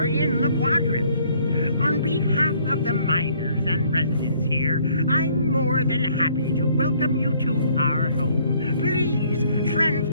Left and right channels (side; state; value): both; inverted; correlation -0.63